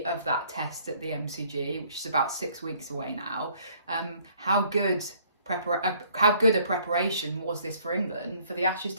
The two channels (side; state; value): both; inverted; correlation -0.60